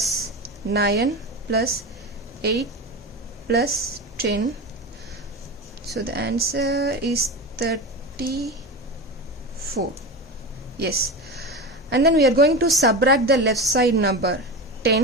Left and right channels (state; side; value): normal; both; correlation 0.24